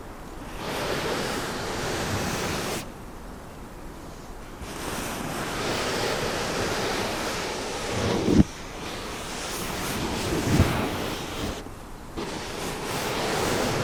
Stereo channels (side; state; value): both; identical; correlation 1.00